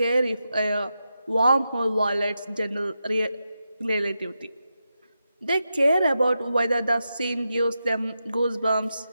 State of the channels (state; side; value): inverted; both; correlation -0.88